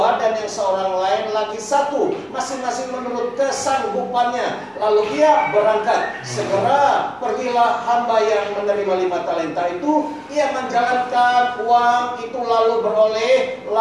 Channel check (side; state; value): both; identical; correlation 1.00